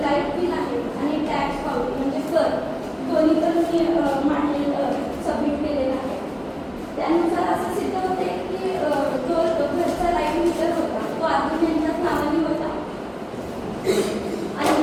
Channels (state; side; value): identical; both; correlation 1.00